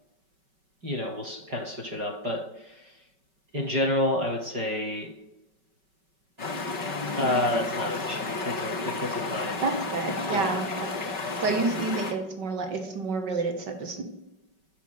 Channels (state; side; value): late; left; 5.3 ms